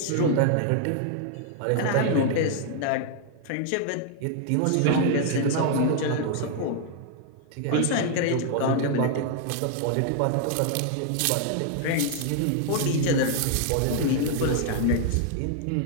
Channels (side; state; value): both; different; correlation 0.00